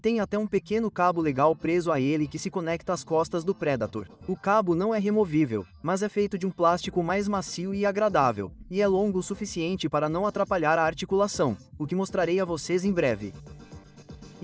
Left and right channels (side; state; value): both; identical; correlation 1.00